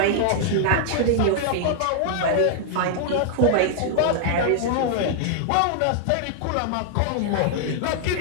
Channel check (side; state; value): both; different; correlation -0.01